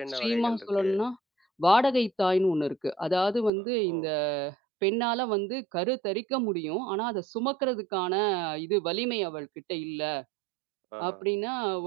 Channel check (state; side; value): drops out; left; at 3.5 s